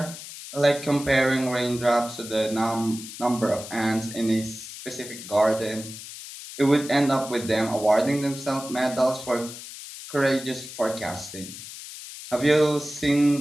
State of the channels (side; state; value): left; noise; hiss, 12 dB below the sound